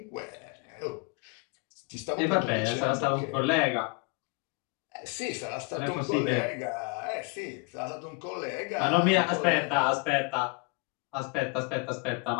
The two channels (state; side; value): quieter; right; 29.9 dB